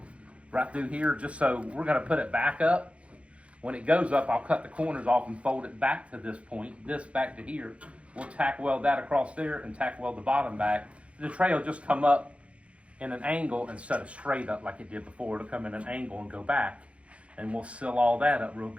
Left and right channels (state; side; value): late; left; 0.062 ms